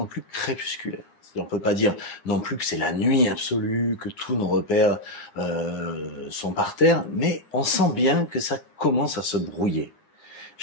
plus crépusculaire, on ne peut pas dire non plus que c'est la nuit absolue, que tous nos repères sont par terre, mais on sent bien que ça commence à se brouiller.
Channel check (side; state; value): right; late; 9.8 ms